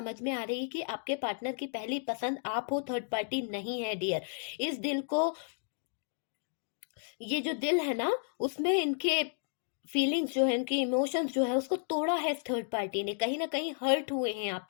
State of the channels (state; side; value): silent; right; digital silence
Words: में आ रही है कि आपके पार्टनर की पहली पसंद आप हो, थर्ड पार्टी नहीं है डियर। इस दिल को, ये जो दिल है ना, उसमें इनके फीलिंग्स जो है, इनके इमोशंस जो है उसको तोड़ा है थर्ड पार्टी ने, कहीं ना कहीं हर्ट हुए हैं